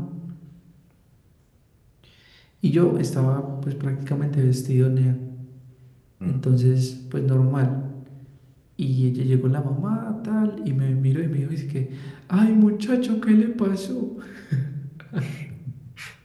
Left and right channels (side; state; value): both; identical; correlation 1.00